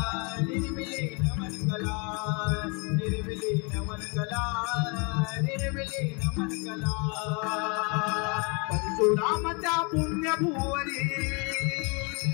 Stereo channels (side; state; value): right; quieter; 32.2 dB